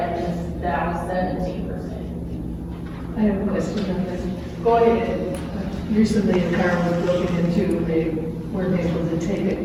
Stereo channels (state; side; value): identical; both; correlation 1.00